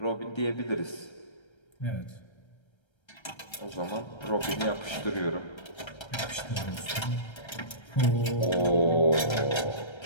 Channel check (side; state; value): right; late; 1.3 ms